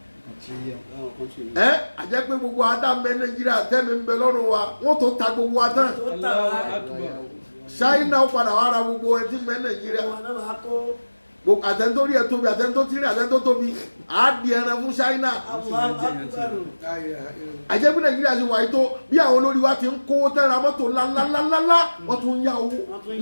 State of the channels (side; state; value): both; inverted; correlation -1.00